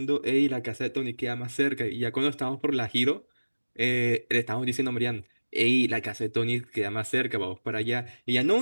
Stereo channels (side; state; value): both; inverted; correlation -1.00